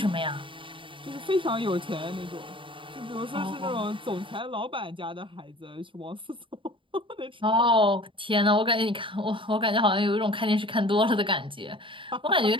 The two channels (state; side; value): late; left; 0.25 ms